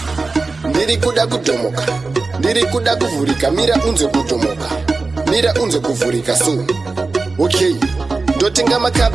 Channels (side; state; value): left; quieter; 3.8 dB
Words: Ndiri kuda kutomoka. Ndiri kuda kuvurika. Mira unze kutomoka. Mira unze kuvurika so. Okay. Ndotenga